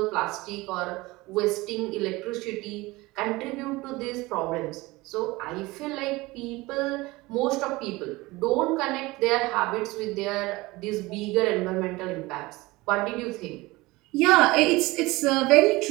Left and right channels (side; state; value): left; quieter; 21.2 dB